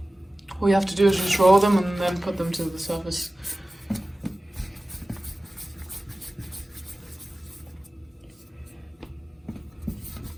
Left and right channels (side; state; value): both; normal; correlation 0.96